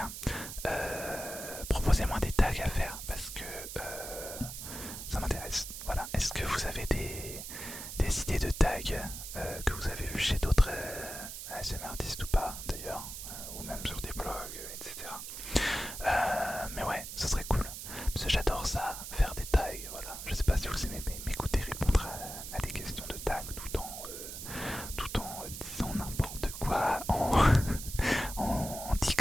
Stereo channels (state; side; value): noise; right; hiss, 9 dB below the sound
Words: proposez-moi des tags à faire parce que ça m'intéresse. Voilà. Est-ce que vous avez des idées de tags que vous avez vu chez d'autres ASMR artistes ou pas d'ailleurs, ou même sur des blogs, etc. Mais ouais, ça serait cool. Parce que j'adore ça, faire des tags. Voilà. Je sais pas si vous aimez m'écouter répondre à des questions de tags tout en disant n'importe quoi, en